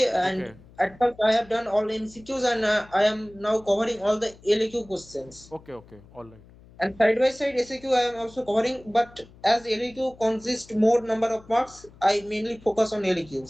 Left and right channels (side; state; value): left; noise; hum, 24 dB below the sound